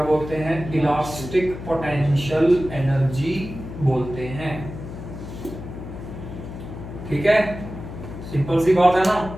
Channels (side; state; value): left; noise; hum, 11 dB below the sound